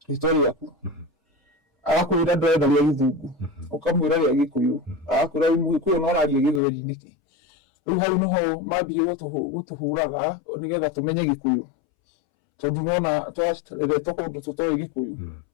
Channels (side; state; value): right; drops out; at 6.6 s